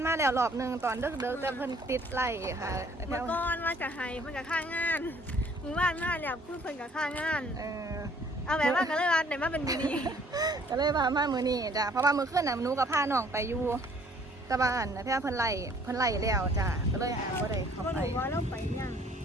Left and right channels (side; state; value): both; normal; correlation 0.59